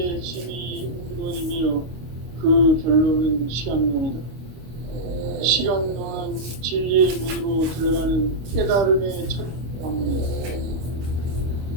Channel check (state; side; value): late; left; 25 ms